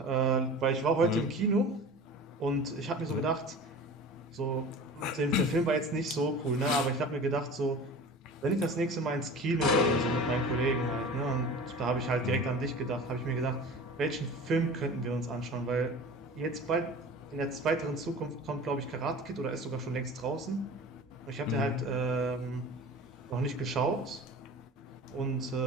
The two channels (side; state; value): both; normal; correlation 0.38